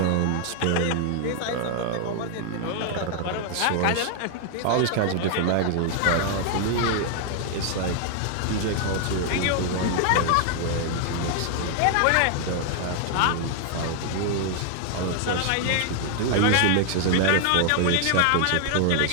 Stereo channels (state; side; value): different; both; correlation 0.00